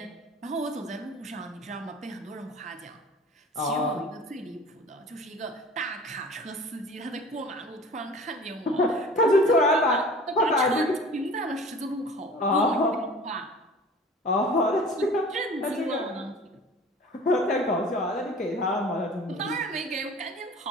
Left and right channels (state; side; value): normal; both; correlation 0.43